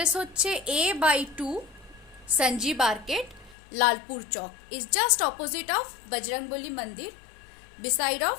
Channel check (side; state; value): right; drops out; at 3.6 s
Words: হচ্ছে A/2 Sanjeev arcade, Lalpur Chowk, is just opposite of Bajrangbali মন্দির, beside of